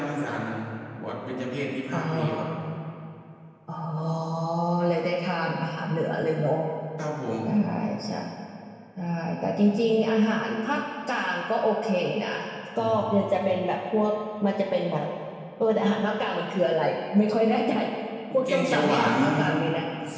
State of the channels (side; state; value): both; identical; correlation 1.00